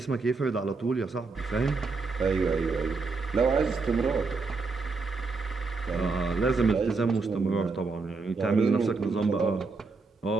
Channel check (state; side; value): quieter; left; 4.1 dB